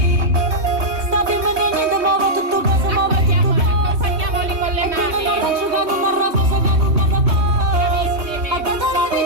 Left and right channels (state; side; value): late; left; 3.3 ms